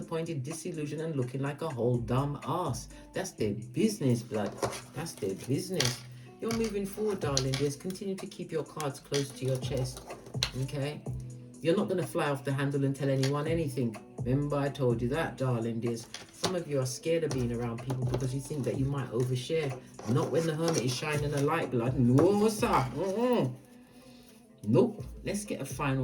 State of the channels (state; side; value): identical; both; correlation 1.00